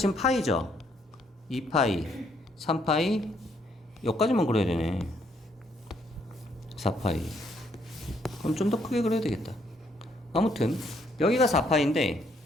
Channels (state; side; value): normal; both; correlation 0.70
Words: 파이죠? 2파이, 3파이, 여기까지만 그려야 되네. 4파이. 그럼 좀 더 크게 그려야 되겠다. 아무튼 여기가 4파인데